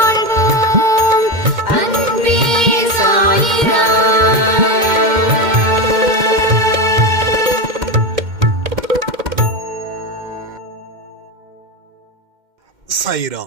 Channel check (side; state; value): left; late; 2.1 ms